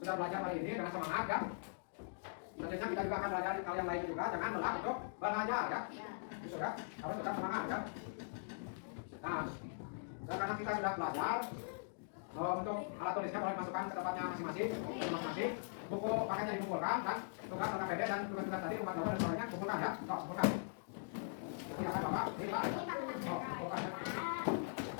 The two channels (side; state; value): right; silent; digital silence